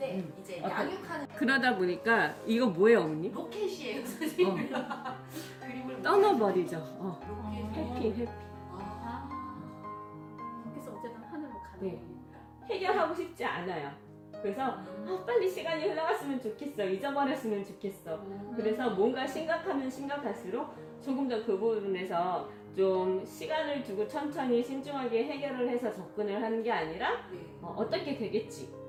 이제 양육하는 그러다 보니까 이거 뭐예요, 어머님? 로켓이에요, 선생님. 그림을 떠나버리죠. 로켓. 해피. 아. 그래서 어쨌든 하늘로 가는 네. 거니까. 해결하고 싶지 않아요. 그래서 빨리 시간이 흘러갔으면 좋겠어. 잊어버렸으면 좋겠어. 그래서 뭔가 심각하면 심각할수록 조금 더 그 부분에서 좀 시간을 두고 천천히 신중하게 해결을 해서 접근을 하는 게 아니라 네. 어떻게 되겠지.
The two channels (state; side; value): identical; both; correlation 1.00